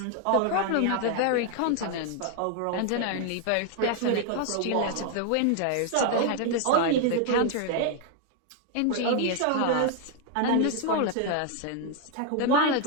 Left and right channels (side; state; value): both; different; correlation 0.00